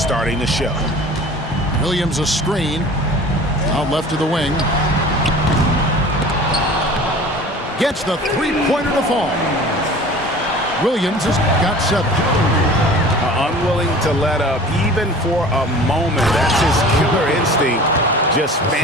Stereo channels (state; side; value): normal; both; correlation 0.42